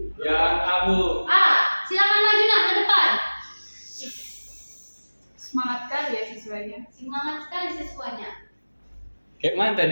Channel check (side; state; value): both; inverted; correlation -1.00